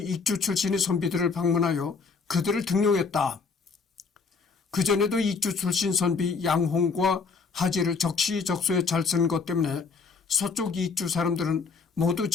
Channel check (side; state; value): right; quieter; 5.0 dB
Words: 출신의 선비들을 방문하여 그들을 등용했다. 그전에도 익주 출신 선비 양홍과 하지를 적시적소에 잘 쓴 것 때문에 서쪽 익주 사람들은 모두